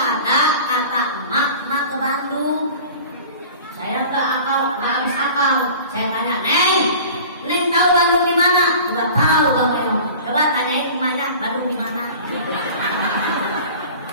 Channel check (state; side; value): inverted; both; correlation -0.41